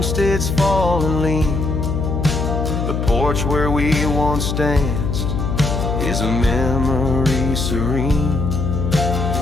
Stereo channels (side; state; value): left; noise; hum, 1 dB below the sound